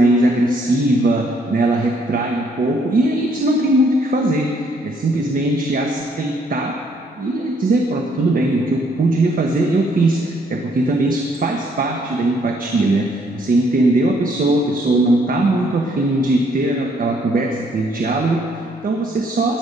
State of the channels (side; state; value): both; normal; correlation 0.67